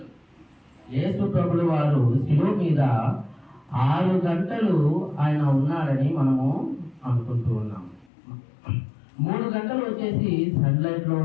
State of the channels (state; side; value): drops out; right; at 8.1 s